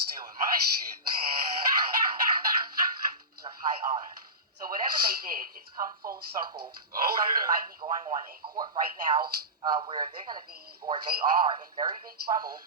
my shit. Of high honor. So whatever they did, it's come full circle. Something might be going on in court right now where they're going to be, or they are, in very big trouble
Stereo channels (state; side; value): normal; both; correlation -0.19